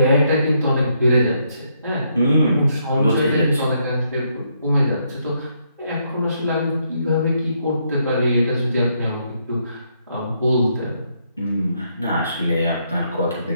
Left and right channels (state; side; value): inverted; both; correlation -0.75